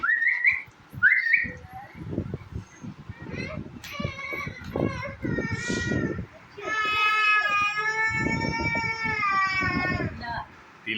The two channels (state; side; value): identical; both; correlation 1.00